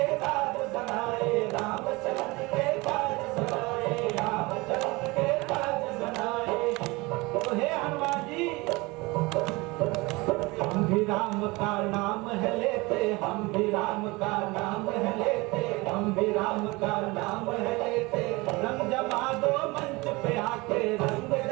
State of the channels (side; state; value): left; quieter; 23.7 dB